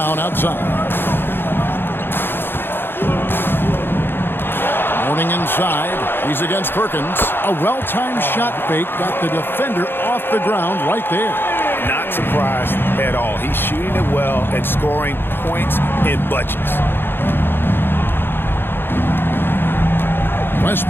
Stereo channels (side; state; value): right; late; 0.10 ms